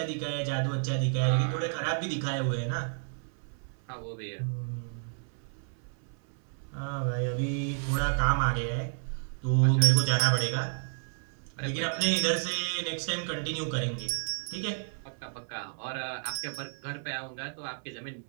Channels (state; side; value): silent; left; 57 dB below the other